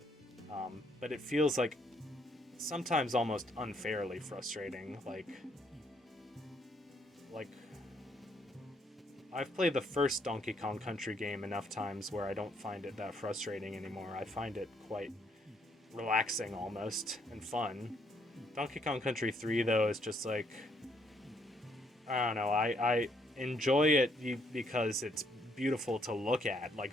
But it feels like sometimes almost unfairly frustrating. Like I've played the first Donkey Kong Country game enough times where I don't find it that frustrating anymore. I find it quite relaxing almost and fun. Donkey Kong Country 3 though is just like, I don't know, I enjoy it because it's beautiful to look at.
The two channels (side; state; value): both; normal; correlation 0.70